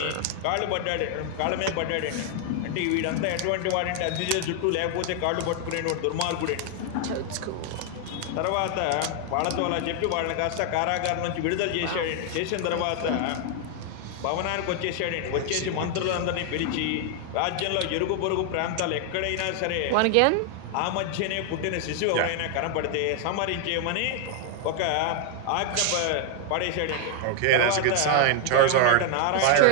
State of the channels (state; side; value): different; both; correlation 0.00